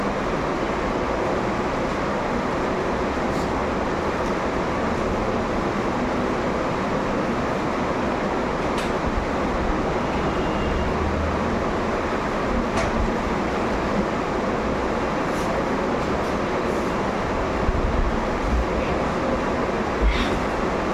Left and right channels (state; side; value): identical; both; correlation 1.00